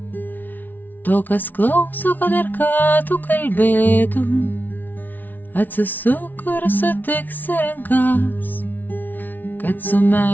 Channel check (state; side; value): late; right; 0.083 ms